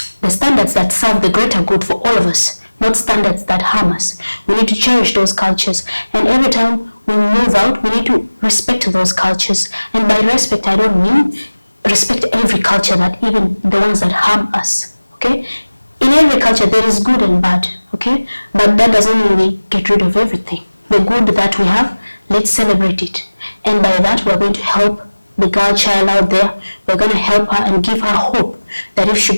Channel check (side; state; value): both; inverted; correlation -1.00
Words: the standards that serve the greater good for all of us, not standards that harm us. We need to cherish those cultures, and every time we move out, we need to respect those cultures. And by respect, I don't mean respect every culture, that even the ones that harm us, okay? In every culture, there is good and bad, okay? But that doesn't mean we get rid of everything. The good that we have, let's celebrate it. And by that, we're going to help the girl child out there. We're going to help her and give her hope that if she